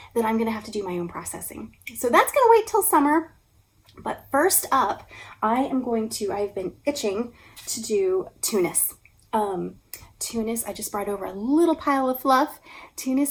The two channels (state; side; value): identical; both; correlation 1.00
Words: that I'm gonna have to do my own processing. So that's gonna wait till summer. But first up, I've been itching to do Tunis. Tunis, I just brought over a little pile of fluff.